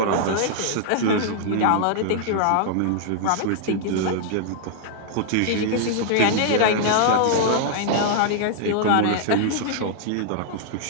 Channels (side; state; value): both; different; correlation -0.01